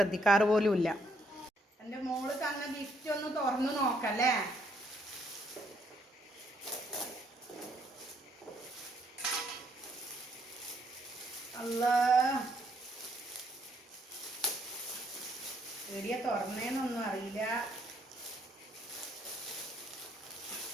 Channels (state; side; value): normal; both; correlation 0.70